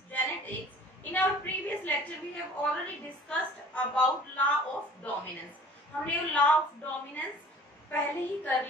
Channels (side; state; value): both; normal; correlation 0.48